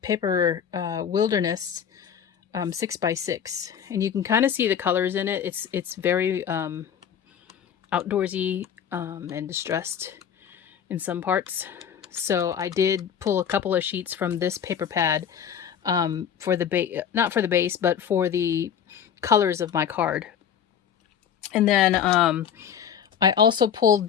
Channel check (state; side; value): quieter; right; 8.3 dB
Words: paper wilderness 6x6, and you can kind of see the colors in it. It's very outdoorsy and distressed in some parts. So I did pull a couple of sheets from this paper pad for the base, not for the base, but for the colors of my card. And then I also pulled